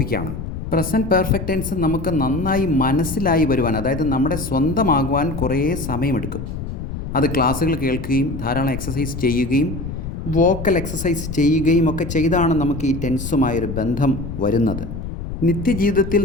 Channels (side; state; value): left; noise; rumble, 7 dB below the sound